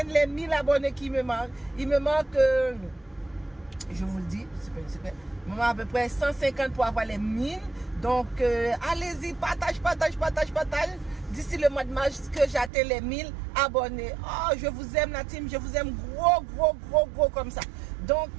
les 1000 abonnés qui me manquent. Il me manque, je vous le dis, il me manque à peu près 150 pour avoir les 1000. Donc, allez-y, partage. D'ici le mois de mars, que j'atteins les 1000 abonnés. Oh, je vous aime la team, je vous aime gros comme ça. Donc,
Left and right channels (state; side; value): drops out; left; at 12.7 s